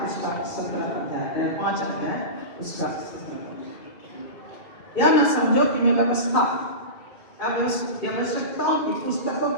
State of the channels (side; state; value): right; late; 2.2 ms